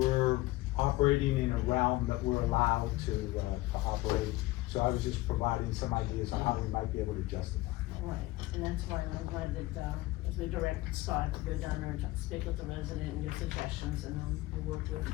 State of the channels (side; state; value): right; quieter; 19.0 dB